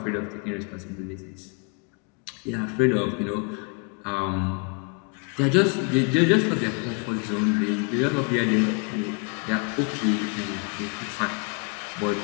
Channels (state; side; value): quieter; right; 35.5 dB